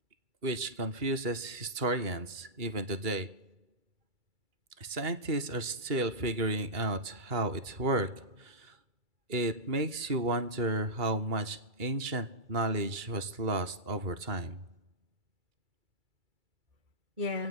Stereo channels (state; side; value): late; left; 2.3 ms